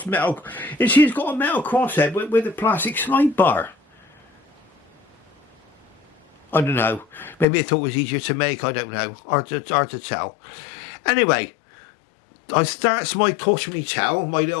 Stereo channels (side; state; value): right; drops out; at 7.5 s